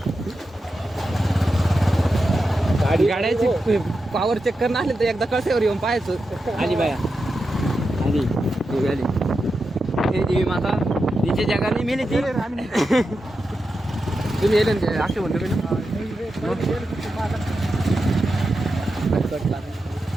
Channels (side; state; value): both; normal; correlation 0.89